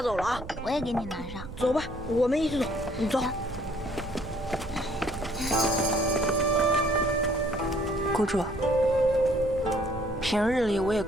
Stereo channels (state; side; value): noise; right; rumble, 13 dB below the sound